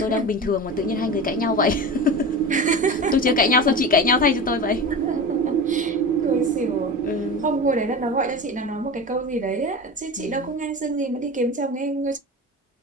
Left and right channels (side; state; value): both; normal; correlation 0.29